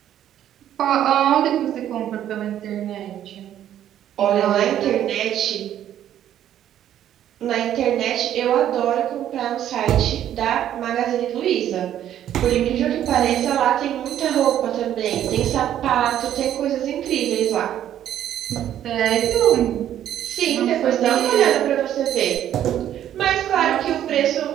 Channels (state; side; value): quieter; left; 11.1 dB